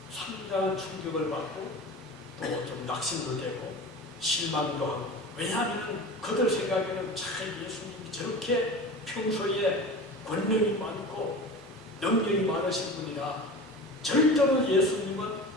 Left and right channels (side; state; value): both; normal; correlation 0.34